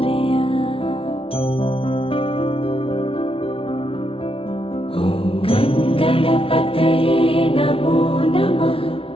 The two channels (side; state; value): right; late; 0.26 ms